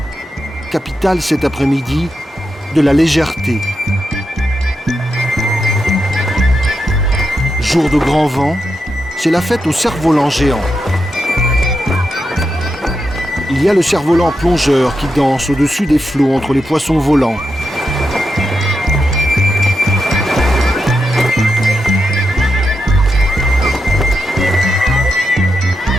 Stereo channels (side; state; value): both; normal; correlation 0.86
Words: capitale cet après-midi de la légèreté. Jour de grand vent, c'est la fête au cerf-volant géant. Il y a le cerf-volant plongeur qui danse au-dessus des flots entre les poissons volants.